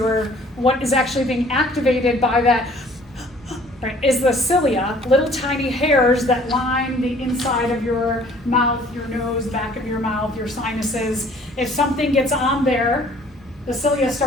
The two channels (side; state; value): both; normal; correlation 0.55